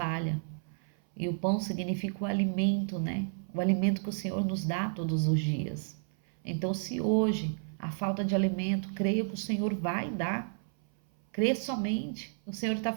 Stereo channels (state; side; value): silent; left; 57 dB below the other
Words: E o pão significa o alimento, né? O alimento que o Senhor nos dá todos os dias. Então, se hoje a falta de alimento, creia que o Senhor vai dar. Crê somente. O Senhor está